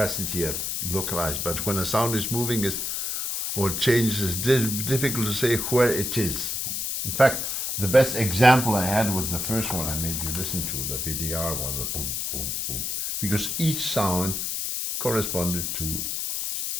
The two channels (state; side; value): noise; left; hiss, 2 dB below the sound